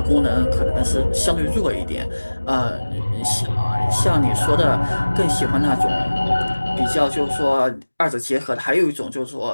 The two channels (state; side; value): inverted; both; correlation -1.00